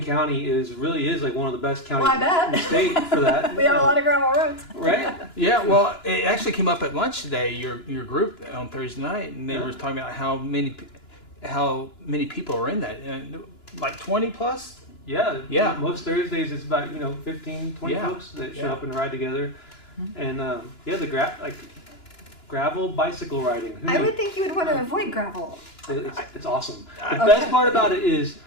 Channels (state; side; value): late; right; 2.9 ms